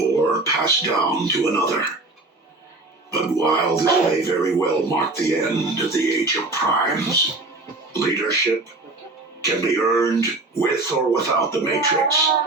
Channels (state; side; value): quieter; left; 3.1 dB